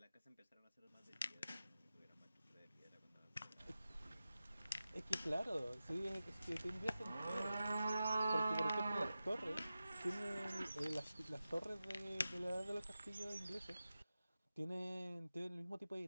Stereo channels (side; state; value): both; inverted; correlation -0.93